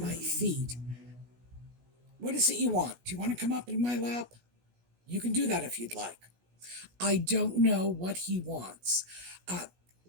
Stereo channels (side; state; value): left; late; 17 ms